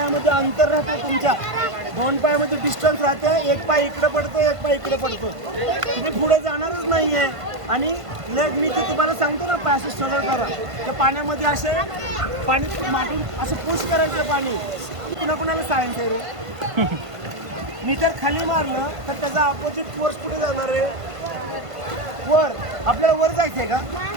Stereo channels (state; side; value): late; left; 1.5 ms